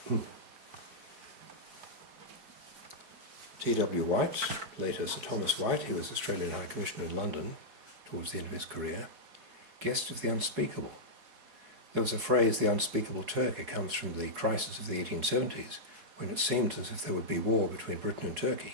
T.W. White, later Sir Thomas White, he was Australian High Commissioner in London towards the end of his career, guest of the unspeakable. There was a phrase, the unspeakable Turk. It comes from the crisis of the 1870s, when it seemed as if there would be war between Britain and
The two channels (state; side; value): late; left; 4.4 ms